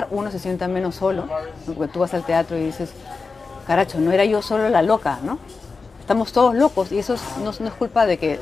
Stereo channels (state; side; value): quieter; right; 4.4 dB